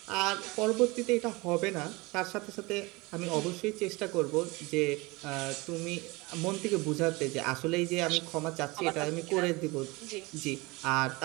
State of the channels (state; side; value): quieter; left; 24.0 dB